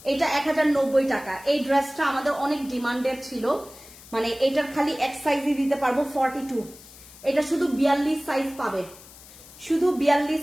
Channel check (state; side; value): noise; left; hiss, 20 dB below the sound